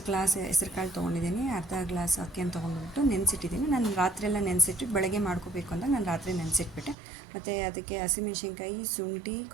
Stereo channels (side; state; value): left; drops out; at 7.0 s